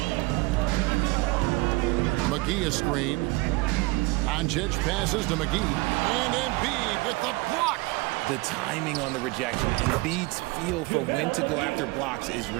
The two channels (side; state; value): left; quieter; 23.4 dB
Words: McGee a screen. Doncic passes to McGee. And Embiid with the block. The timing on the rejection, Embiid's feel for when to go after blocks is